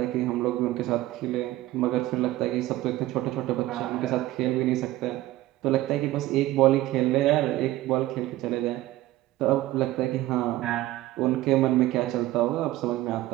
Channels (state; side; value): quieter; left; 16.3 dB